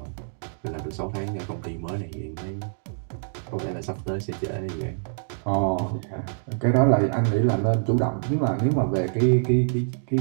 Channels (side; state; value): left; silent; digital silence